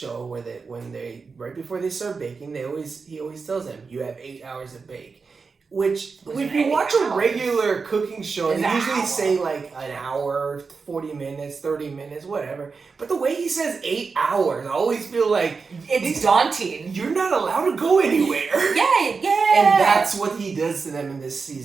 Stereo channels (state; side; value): quieter; left; 4.8 dB